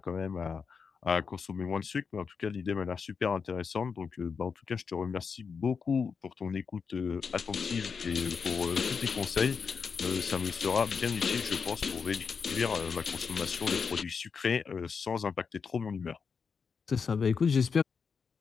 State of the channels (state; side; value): quieter; right; 5.8 dB